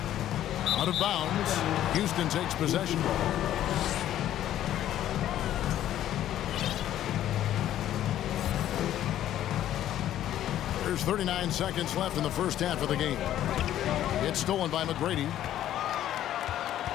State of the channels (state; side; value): quieter; right; 12.1 dB